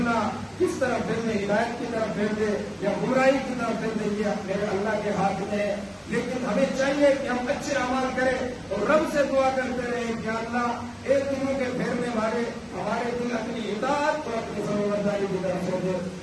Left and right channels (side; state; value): both; identical; correlation 1.00